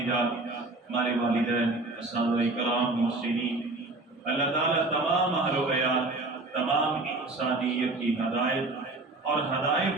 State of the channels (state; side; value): quieter; left; 3.1 dB